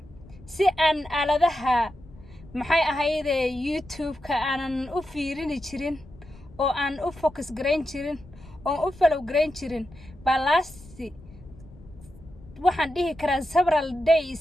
si aan aaladaha maxay ahayde YouTube-ka aanan u fiirin jirin oo aan u focus gareyn jirin oo u follow gareyn jirin balasi waxaan dhihi karaa several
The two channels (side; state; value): left; noise; rumble, 21 dB below the sound